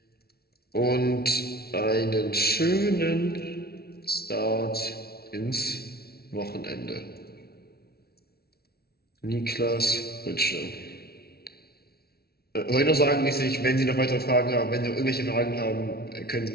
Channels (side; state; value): right; late; 0.45 ms